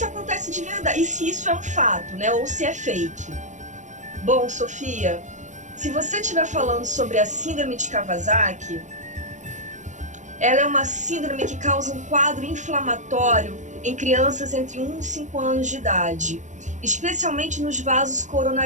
acontece de verdade, e se isso é um fato, né? Ou se é fake. Bom, Sofia, se você estiver falando sobre a síndrome de Kawasaki, ela é uma síndrome que causa um quadro inflamatório em crianças entre 1 e 5 anos de idade, especialmente nos vasos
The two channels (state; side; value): late; left; 0.35 ms